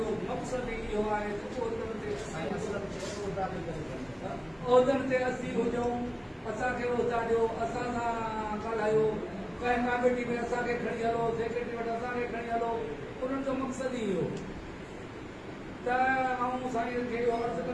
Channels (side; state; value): both; identical; correlation 1.00